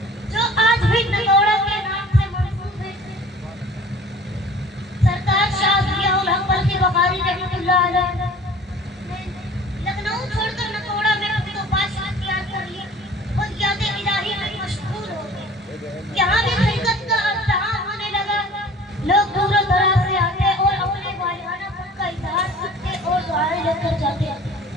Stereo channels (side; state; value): both; normal; correlation 0.46